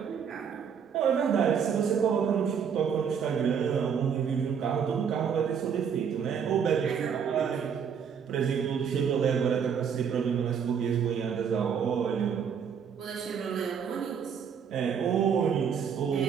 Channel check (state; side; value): quieter; left; 7.3 dB